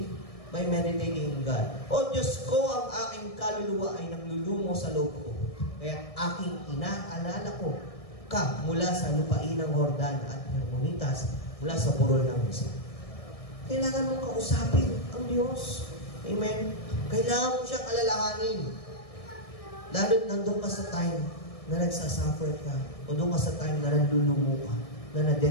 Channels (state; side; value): late; right; 1.6 ms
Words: by meditating in God. O Diyos ko, ang aking kaluluwa ay nanglulumo sa loob ko. Kaya aking inaalala ko ka mula sa lupain ng Jordan at Hermonitas, mula sa burol ng Misa. Kailangan mong kausapin ang Diyos. Amen? Kailangan mo siyang alalahanin. Lalo nandun ka sa time na nagsasuffer ka, o doon ka sa time na nandulumo ka, na